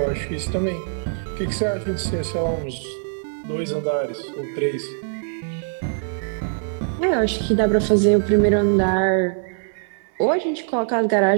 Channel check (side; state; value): left; silent; 64 dB below the other